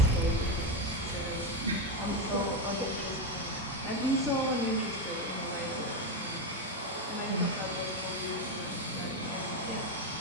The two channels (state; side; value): normal; both; correlation 0.10